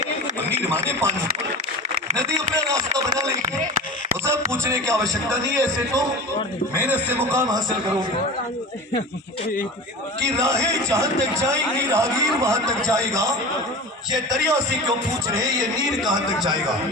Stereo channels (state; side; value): normal; both; correlation 0.33